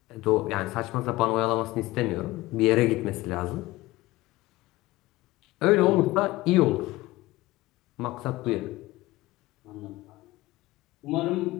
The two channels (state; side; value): quieter; right; 18.8 dB